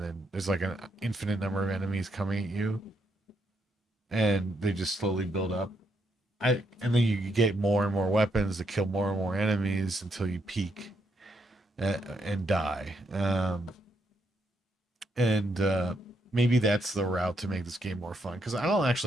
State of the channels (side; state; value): both; normal; correlation 0.77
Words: then there's like an infinite number of enemies coming at you, and they just slowly build up. And then you get more and more weapons to kill more and more enemies until you peak and die. And maybe that's the route to make this game more fun, because I don't